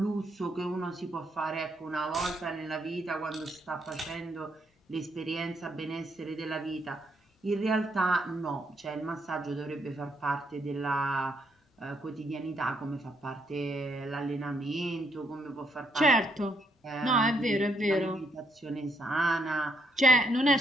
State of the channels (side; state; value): both; normal; correlation 0.74